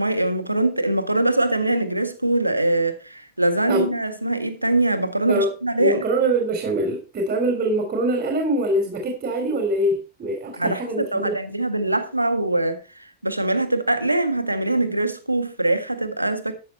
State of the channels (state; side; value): inverted; both; correlation -0.52